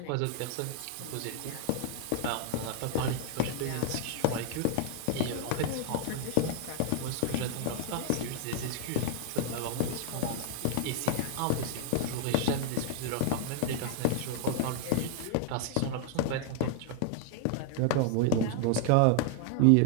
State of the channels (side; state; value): both; different; correlation 0.00